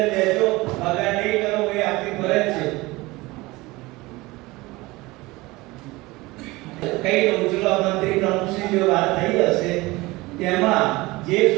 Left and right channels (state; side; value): quieter; left; 21.3 dB